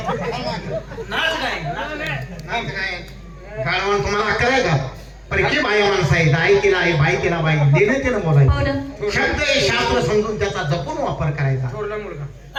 नाच काय गाडवान तुम्हाला अक्कल आहे का? परकी बाई माणसं आहे, आई तिला आहे, बाई तिला बाई, देणं तिनं बोलायचं. शब्द हे शास्त्र समजून त्याचा जपून वापर करायचा. थोरला मुलगा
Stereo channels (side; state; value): both; identical; correlation 1.00